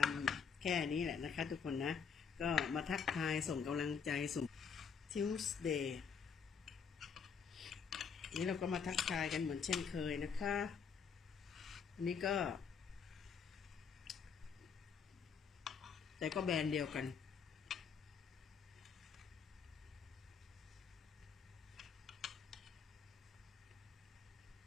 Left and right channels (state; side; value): quieter; right; 6.3 dB